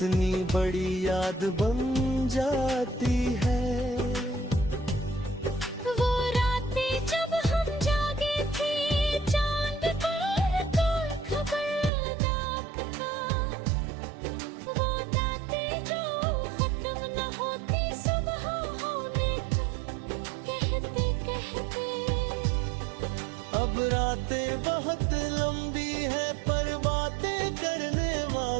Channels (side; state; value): left; drops out; at 11.9 s